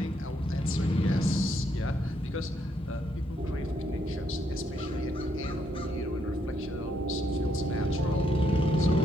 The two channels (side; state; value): both; normal; correlation 0.75